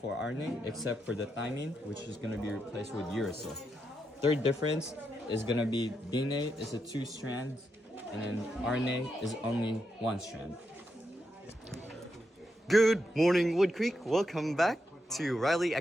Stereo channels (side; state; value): both; normal; correlation 0.84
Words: RNA, except for the thymine, which is going to be replaced with uracil. Third difference is going to be DNA is a 2 strands, and then RNA is only 1 strand. Good morning, Wood Creek. Welcome back to DRA